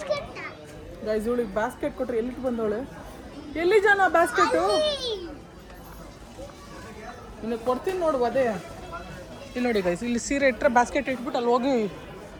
ಗೈಸ್ ಇವಳಿಗೆ ಬಾಸ್ಕೆಟ್ ಕೊಟ್ರೆ ಎಲ್ಲಿಗೆ ಬಂದವಳೆ ಎಲ್ಲಿ ಜನ ಬಾಸ್ಕೆಟು ನಿನಗೆ ಕೊಡ್ತೀನಿ ನೋಡು ಅದೇ ಇಲ್ಲಿ ನೋಡಿ ಗೈಸ್ ಇಲ್ಲಿ ಸೀರೆ ಇಟ್ಟರೆ ಬಾಸ್ಕೆಟ್ ಇಟ್ಬಿಟ್ಟು ಅಲ್ಲಿ ಹೋಗಿ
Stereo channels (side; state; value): both; identical; correlation 1.00